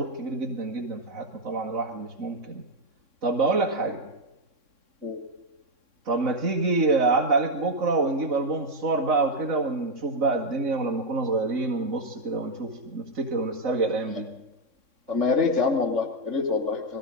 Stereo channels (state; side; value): late; left; 3.6 ms